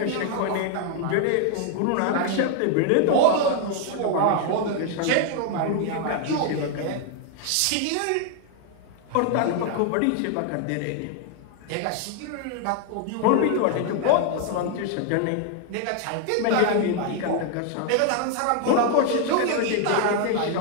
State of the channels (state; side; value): different; both; correlation 0.00